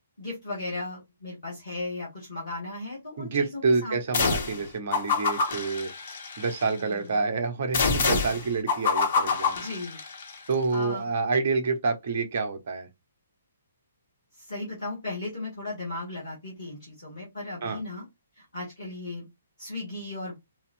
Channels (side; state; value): both; inverted; correlation -0.58